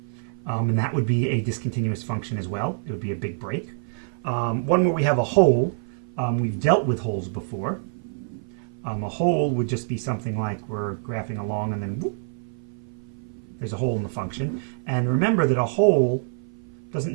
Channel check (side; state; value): left; silent; 56 dB below the other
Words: And that would be a discontinuous function as well. It would be a big break. One where we have a hole. We've dealt with holes before. A hole would just be something like we're graphing along and then whoop, there's a hole in the function. And remember that a hole doesn't